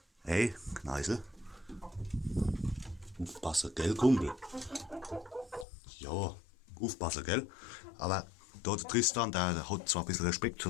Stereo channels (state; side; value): drops out; right; at 5.7 s